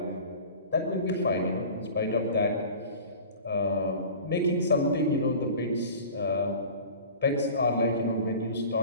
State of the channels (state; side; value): inverted; both; correlation -0.40